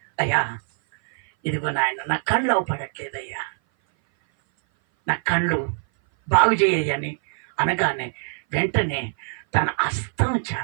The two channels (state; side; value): silent; left; 58 dB below the other